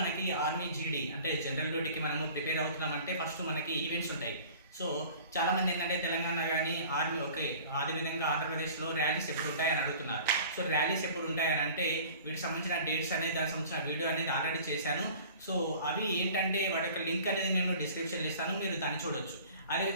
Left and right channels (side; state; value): both; inverted; correlation -0.45